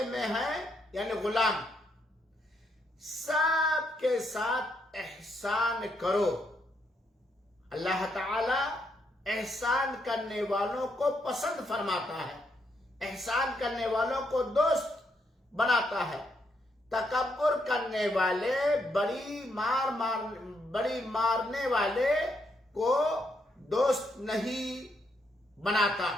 میں ہیں یعنی غلام، سب کے ساتھ احسان کرو۔ اللہ تعالی احسان کرنے والوں کو پسند فرماتا ہے، احسان کرنے والوں کو دوست بناتا ہے۔ تکبر کرنے والے، بڑی مارنے والے کو دوست نہیں بناتا۔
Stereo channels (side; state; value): both; normal; correlation 0.77